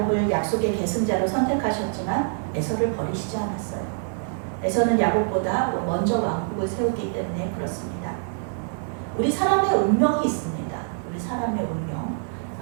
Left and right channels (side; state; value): left; silent; 55 dB below the other